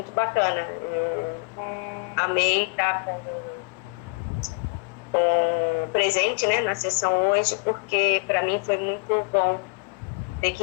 bacana. Amei estar com presente, né, na sessão hoje, porque para mim foi muito bom ter que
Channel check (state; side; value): quieter; right; 33.5 dB